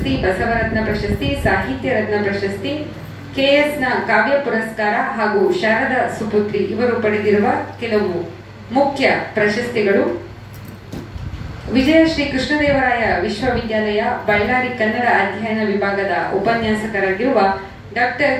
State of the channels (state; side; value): identical; both; correlation 1.00